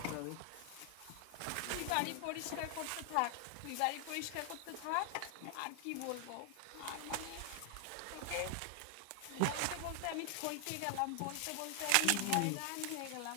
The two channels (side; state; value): both; different; correlation 0.00